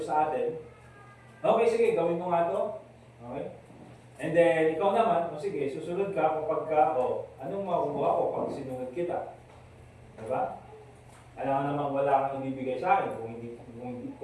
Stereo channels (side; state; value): both; identical; correlation 1.00